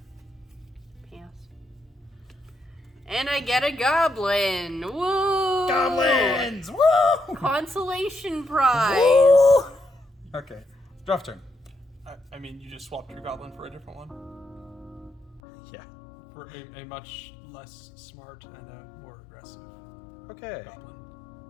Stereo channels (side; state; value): right; drops out; at 15.4 s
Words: Pass. And I get a goblin. Woo! Goblins! Woo! Consolation prize. Woo! Okay, draft turn. I mean, you just swapped your goblin for a different one. Yeah. For a much less smart and a more aggressive Okay. goblin.